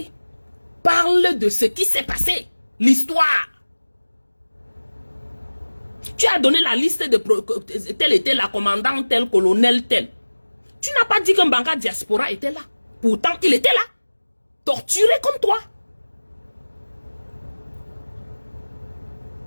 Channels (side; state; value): both; inverted; correlation -1.00